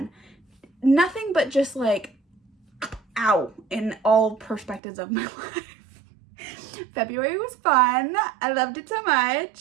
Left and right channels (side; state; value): left; drops out; at 4.8 s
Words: nothing but just like, ow, in all perspectives of my life. February was fun. I loved it so